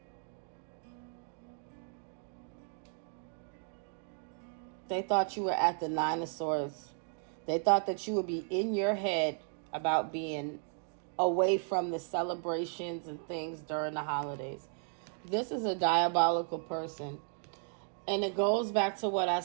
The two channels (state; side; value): silent; left; 55 dB below the other